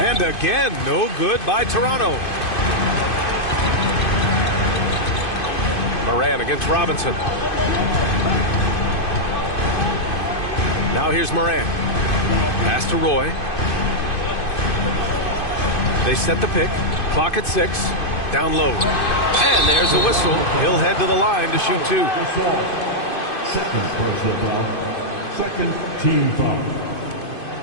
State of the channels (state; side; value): late; right; 2.5 ms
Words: again, no good by Toronto. Morant against Robinson. Now here's Morant. Pass to Roy. They set the pick. Clock at 6. Down low. And there's a whistle. He'll head to the line to shoot 2. Second personal foul. Second team foul.